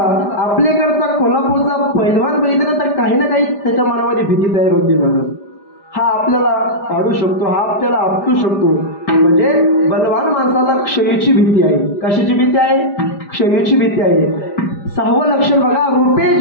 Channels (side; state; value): right; late; 5.0 ms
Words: आपल्याकडचा कोल्हापूरचा पैलवान बघितला तर काही ना काही त्याच्या मनामध्ये भीती तयार होती. म्हणून हा आपल्याला पाडू शकतो, हा आपल्याला आपटू शकतो. म्हणजे बलवान माणसाला क्षयीची भीती आहे. कशाची भीती आहे? क्षयीची भीती आहे. 6वं लक्षण बघा, रूपे